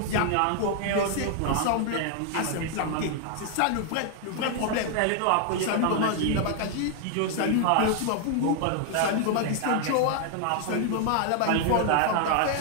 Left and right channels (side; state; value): both; different; correlation 0.00